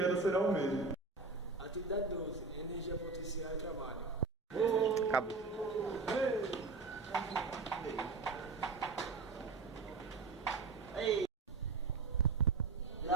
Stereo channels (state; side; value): quieter; left; 4.1 dB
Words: será o mesmo. Atividade 12. Energia potencial e trabalho. Acabou.